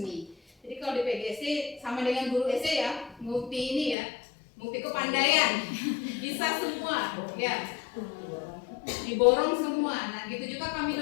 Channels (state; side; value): drops out; right; at 4.0 s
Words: Jadi kalau di PGSD sama dengan guru SD ya, multi ini ya, multi kepandaian, bisa semua, ya, diborong semua. Nah, gitu juga kami